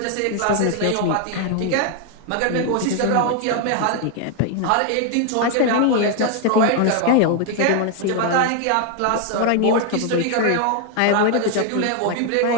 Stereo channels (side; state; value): both; different; correlation 0.01